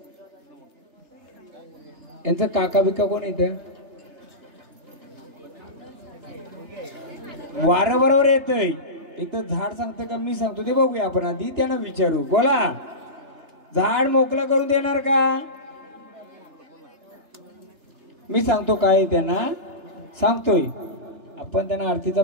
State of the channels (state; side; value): late; left; 3.3 ms